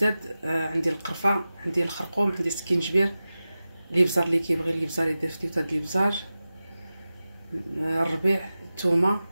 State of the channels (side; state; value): both; inverted; correlation -0.95